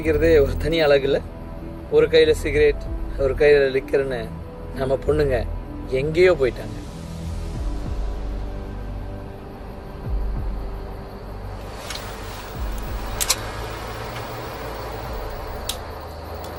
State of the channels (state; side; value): identical; both; correlation 1.00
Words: ஒரு தனி அழகு இல்லை? ஒரு கையில் சிகரெட், ஒரு கையில் லிக்கர்னு நம்ம பொண்ணுங்க எங்கேயோ போயிட்டாங்க.